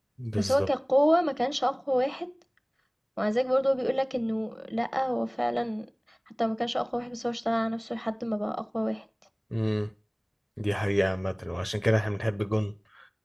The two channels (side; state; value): both; identical; correlation 1.00